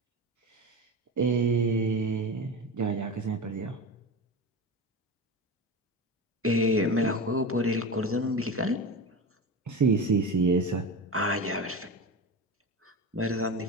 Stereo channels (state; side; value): normal; both; correlation 0.25